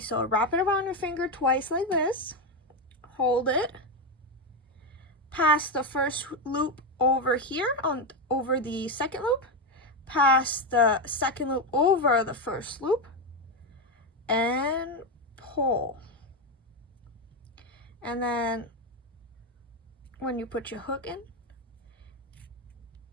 wrap it around your finger twice like this, hold it, pass the first loop over here over the second loop, pass the second loop over the first loop, and pull. And then when you put your hook in,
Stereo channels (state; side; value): normal; both; correlation 0.10